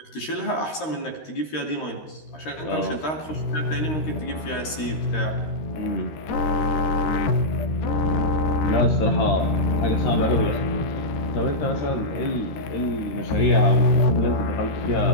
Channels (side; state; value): right; late; 13 ms